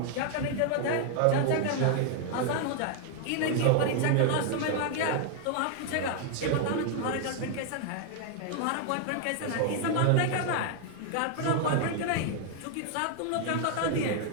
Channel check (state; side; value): different; both; correlation 0.00